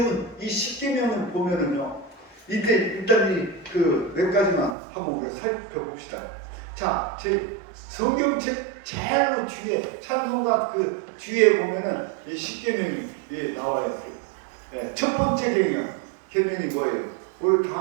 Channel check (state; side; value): drops out; left; at 4.8 s